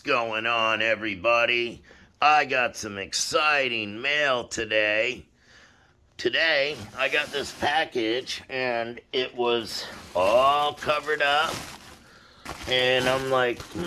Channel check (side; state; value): both; identical; correlation 1.00